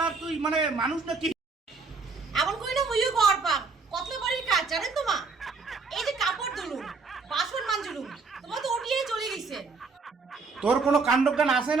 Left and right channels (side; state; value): left; quieter; 4.5 dB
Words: তুই মানে মানুষ নাকি? এমন কইলে মুইও ঘর পাম কতলে বাড়ির কাজ জানেন তোমা এই যে কাপড় ধুলুম বাসন মাজলুম তোমার তো ওটিয়ে চলে গেছে। তোর কোনো কাণ্ডজ্ঞান আছে